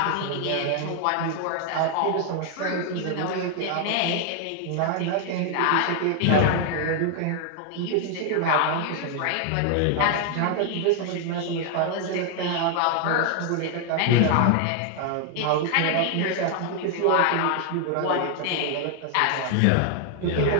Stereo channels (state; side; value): different; both; correlation 0.00